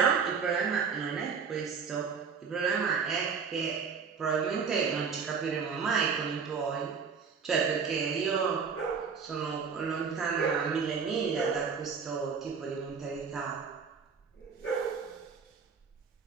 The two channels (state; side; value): quieter; left; 5.9 dB